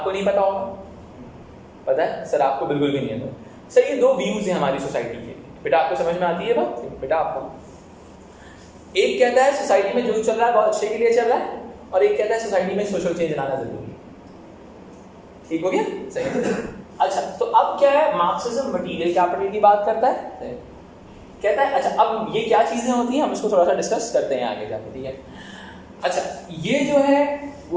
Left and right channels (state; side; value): identical; both; correlation 1.00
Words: नहीं पता होगा? पता है सर? आपको बिल्कुल भी नहीं है सर। ये दो व्यूज हैं हमारी सोसाइटी के। बेटा आपको समझ में आती है बात? बेटा आपको, एक कहता है सोसाइटी में जो चल रहा है बहुत अच्छे के लिए चल रहा है, और एक कहता है सोसाइटी में सोशल चेंज लाना जरूरी है। ठीक हो गया? सही। अच्छा, तो अब क्या है, मार्क्सिज्म मटीरियल कैपिटल की बात करता है कहता है अच्छा अब ये क्या चीजें होती हैं हम इसको थोड़ा सा डिस्कस करते हैं आगे जाके, ठीक है। अच्छा ये जो है